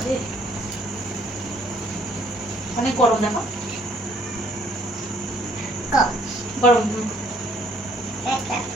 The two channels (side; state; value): both; normal; correlation 0.62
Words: অনেক গরম। দেখো গরম,